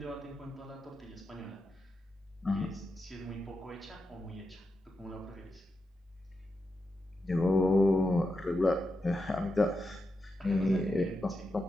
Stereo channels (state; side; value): normal; both; correlation 0.87